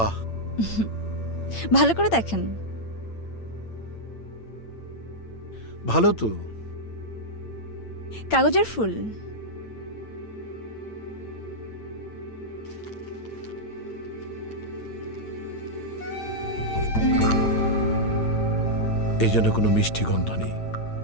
ভালো করে দেখেন। ভালো তো। কাগজের ফুল। এই জন্য কোনো মিষ্টি গন্ধ নেই।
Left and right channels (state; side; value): late; right; 8.8 ms